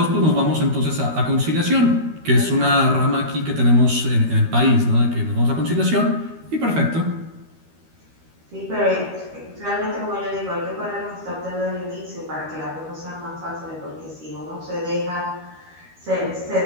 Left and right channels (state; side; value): late; left; 13 ms